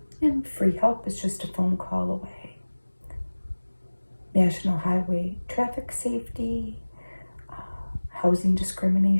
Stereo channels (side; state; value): both; inverted; correlation -1.00